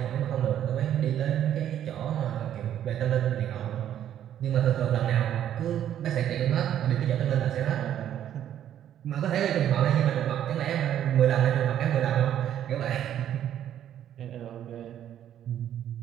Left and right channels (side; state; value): left; quieter; 10.7 dB